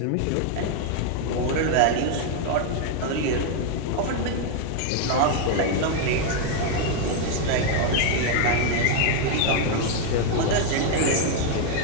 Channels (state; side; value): different; both; correlation 0.01